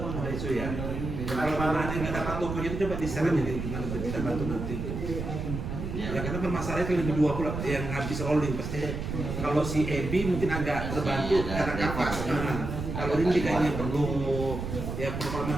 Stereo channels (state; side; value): noise; right; rumble, 5 dB below the sound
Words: isu ya. Kalau mana ada yang nggak dapat tokonya itu coba di-share aja nih, gimana kita bantu nanti. Ya karena permasalahannya itu lebih 20 yang habis rolling pasti. Kalau si Ebi mungkin agak terbantu karena kapak. Kalau Rindi kayaknya perlu ya kalau